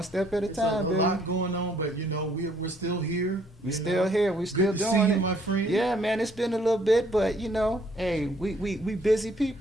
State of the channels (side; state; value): both; normal; correlation 0.64